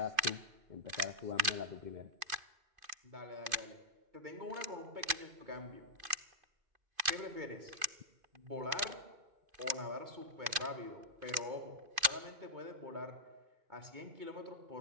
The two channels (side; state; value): left; late; 2.5 ms